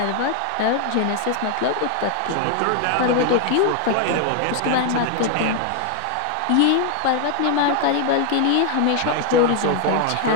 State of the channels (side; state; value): both; different; correlation 0.01